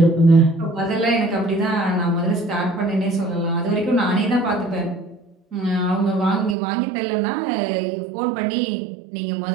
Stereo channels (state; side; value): drops out; left; at 6.6 s